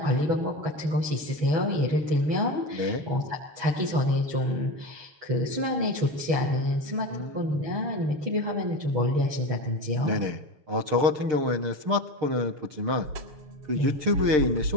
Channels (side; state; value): left; late; 6.6 ms